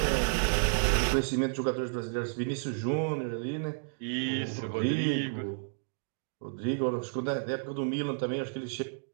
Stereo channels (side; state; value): left; silent; digital silence